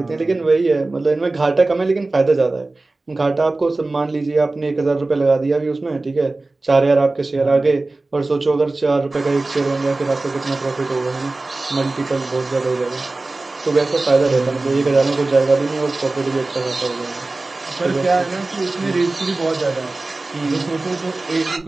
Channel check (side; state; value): left; quieter; 3.2 dB